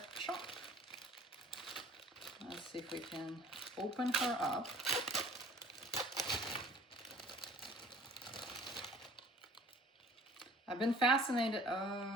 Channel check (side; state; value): both; normal; correlation 0.50